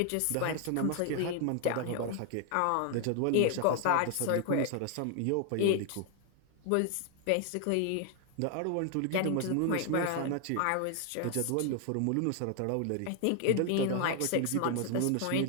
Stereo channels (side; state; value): both; different; correlation 0.00